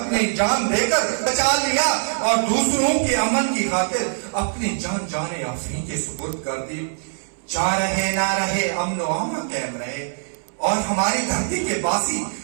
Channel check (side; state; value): left; silent; 64 dB below the other